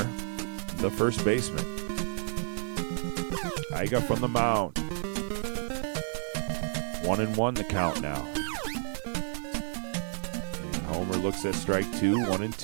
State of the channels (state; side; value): silent; left; digital silence